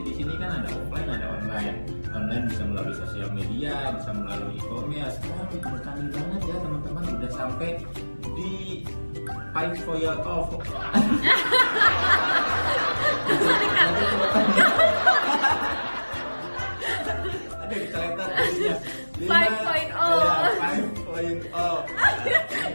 di sini kan ada offline, ada online. Online bisa melalui sosial media, bisa melalui e-commerce. Sekarang udah canggih banget ya teman-teman, udah sampai di fight for your off. Ada di kereta ya. 5.0.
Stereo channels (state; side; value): inverted; both; correlation -1.00